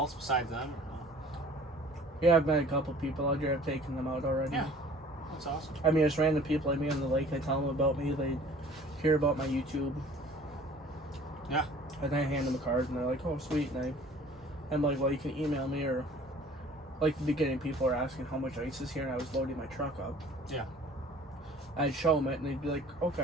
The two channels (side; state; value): both; normal; correlation 0.50